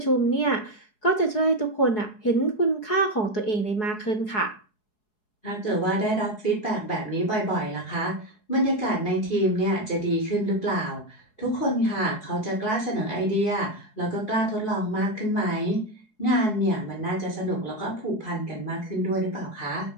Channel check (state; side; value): late; right; 4.7 ms